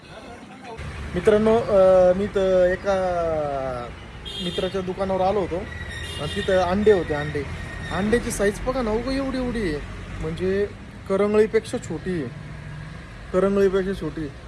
मित्रांनो, मी तर एका मित्राच्या दुकानावर आलो होतो आणि तिथं अंडे होते. अंड्याची साईज बघा ना, उगा एवढी आहे, म्हणजे करंगळीपेक्षा छोटी आहे.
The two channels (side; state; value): both; identical; correlation 1.00